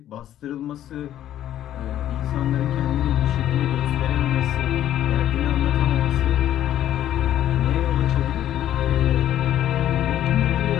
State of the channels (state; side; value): quieter; right; 11.8 dB